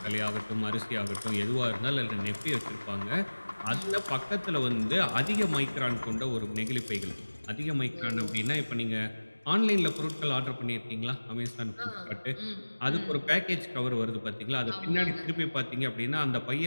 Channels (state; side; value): inverted; both; correlation -1.00